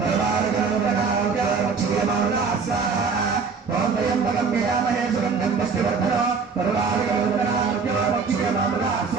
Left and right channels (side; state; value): left; quieter; 5.2 dB